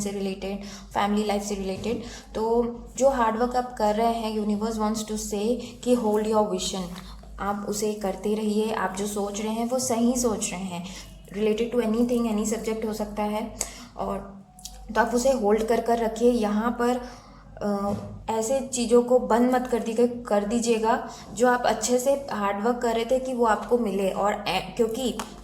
से रिलेटेड, फैमिली लाइफ से रिलेटेड, तो जो हार्डवर्क आप कर रहे हैं, यूनिवर्स वांट्स टू से कि होल्ड योर विजन, आप उसे करते रहिए। आप जो सोच रहे हैं वो सही सोच रहे हैं, related to anything, any subject हो सकता है, और तो आप उसे होल्ड कर रखिए। यहाँ पर ऐसे चीज़ों को बंद मत कर दीजिएगा जो आप अच्छे से हार्डवर्क कर रहे थे कि वो आपको मिले। और क्योंकि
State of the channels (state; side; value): identical; both; correlation 1.00